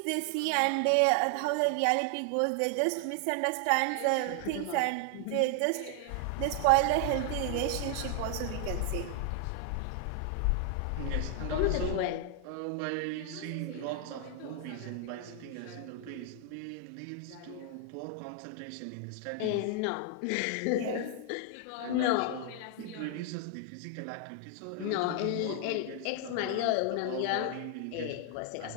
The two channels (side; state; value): both; different; correlation 0.00